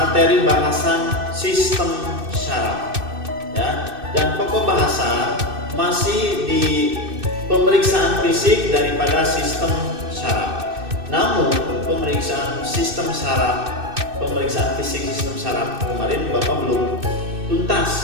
bahasan sistem syaraf, ya. Dan pokok bahasan masih di pemeriksaan fisik daripada sistem syaraf. Namun pemeriksaan fisik sistem syaraf kemarin Bapak belum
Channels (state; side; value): late; left; 2.6 ms